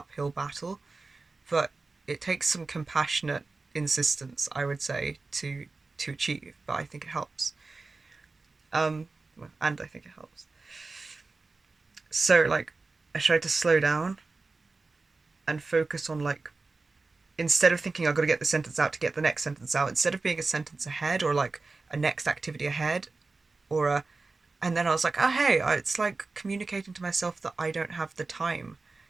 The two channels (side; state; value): left; quieter; 3.8 dB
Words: battle, but it takes some compassionate insistence, I would say, to achieve. But I think it helps. Um, and I think it helps. So I tried to slow down and focus on instead of thinking I've got to get the sentence out to get the next sentence out, instead of being a sentence ahead, or like a next activity ahead, or a and then I was like, oh hey, it's like communicating to myself that I don't have the time